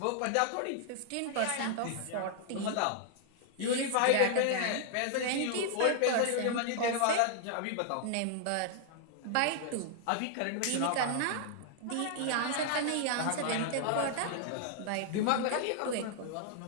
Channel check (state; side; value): different; both; correlation 0.00